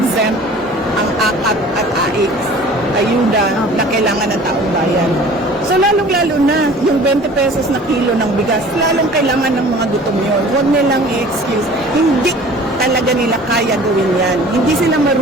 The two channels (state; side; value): normal; both; correlation 0.46